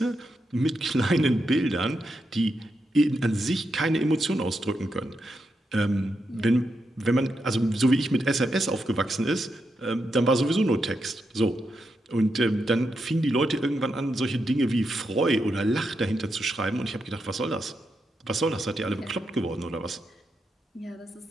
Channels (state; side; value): normal; both; correlation 0.84